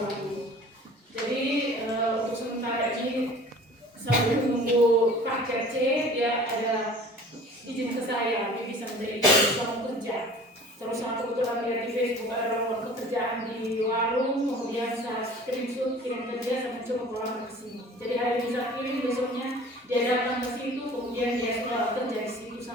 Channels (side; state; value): both; normal; correlation 0.45